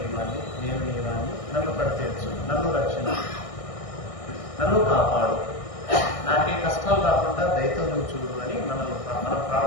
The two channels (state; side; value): late; right; 1.6 ms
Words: నేను నీవాణ్ణి, నన్ను పడితేర్చు, నన్ను రక్షణ, నన్ను కాపాడు, నాకే కష్టాలు రాకుండా దయతో నువ్వు చూడు అని మనం